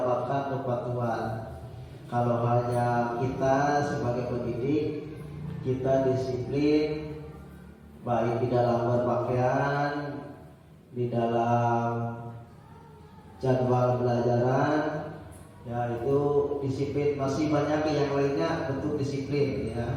kepatuhan. Kalau hanya kita sebagai pendidik, kita disiplin baik di dalam berpakaian, di dalam jadwal pelajaran, ya itu disiplin. Masih banyak yang lainnya bentuk disiplin,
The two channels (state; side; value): identical; both; correlation 1.00